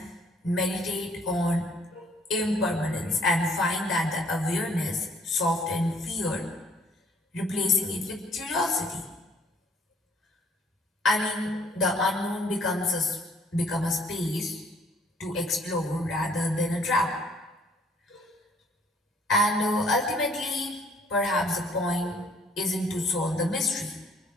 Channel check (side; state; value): both; normal; correlation 0.61